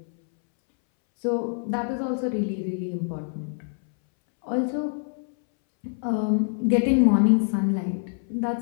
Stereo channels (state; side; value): silent; right; 62 dB below the other